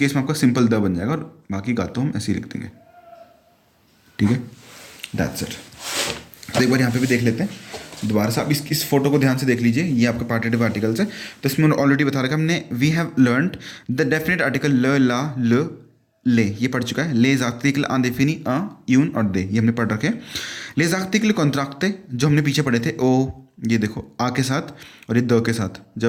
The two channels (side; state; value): both; identical; correlation 1.00